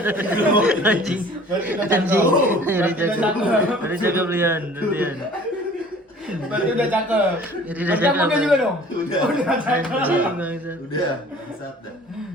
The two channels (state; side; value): normal; both; correlation 0.49